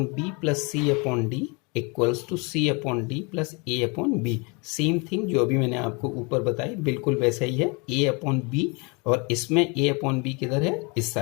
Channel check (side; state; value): right; quieter; 30.3 dB